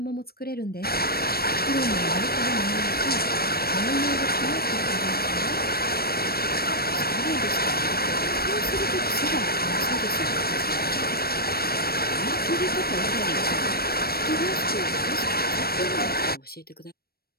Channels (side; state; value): right; late; 0.44 ms